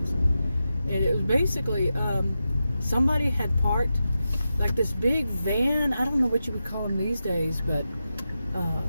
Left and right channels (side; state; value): both; inverted; correlation -0.90